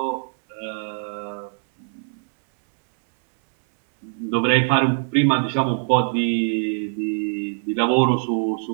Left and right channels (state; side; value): silent; left; 64 dB below the other